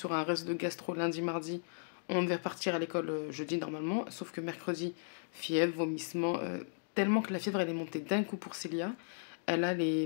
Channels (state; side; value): silent; right; digital silence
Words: un reste de gastro lundi, mardi, on devait repartir à l'école jeudi normalement, sauf que mercredi, fièvre, vomissement, tellement que la fièvre elle est montée d'un coup pour Célia, elle a